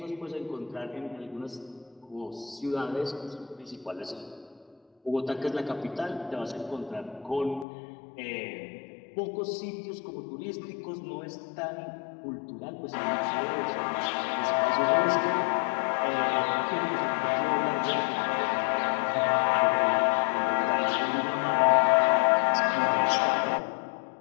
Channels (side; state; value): right; drops out; at 7.7 s